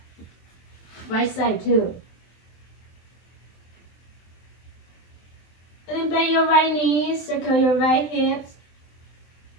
right side too. And then bend your right knees, circle your right hips.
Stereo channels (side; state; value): right; late; 23 ms